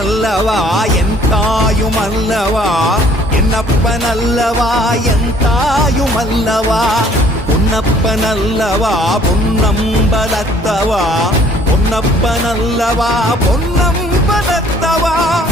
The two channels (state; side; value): normal; both; correlation 0.58